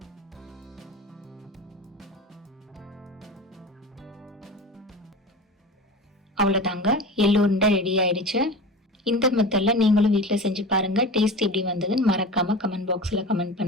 அவ்வளோதாங்க, எள்ளு உருண்டை ரெடி ஆயிடுச்சு. இந்த மெத்தட்ல நீங்களும் வீட்டில் செஞ்சு பாருங்க. டேஸ்ட் எப்படி வந்ததுன்னு மறக்காம கமெண்ட் பாக்ஸில் கமெண்ட்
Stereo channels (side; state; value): both; normal; correlation 0.32